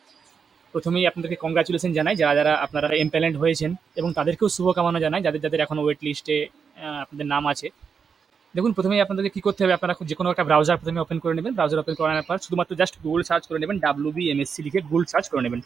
প্রথমেই আপনাদেরকে কংগ্রাচুলেশন জানাই যারা আপনারা এমপ্যানেলড হয়েছেন এবং তাদেরকেও শুভকামনা জানাই যাদের এখনও ওয়েট লিস্টে আপনাদের নাম আছে। দেখুন প্রথমেই আপনাদেরকে কী করতে হবে, আপনারা যে কোনো একটা ব্রাউজার প্রথমে ওপেন করে নেবেন। ব্রাউজার ওপেন করানোর পর শুধুমাত্র জাস্ট গুগল সার্চ করে নেবেন, WBMSC লিখে গুগল সার্চ করে নেবেন।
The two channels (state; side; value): quieter; left; 6.2 dB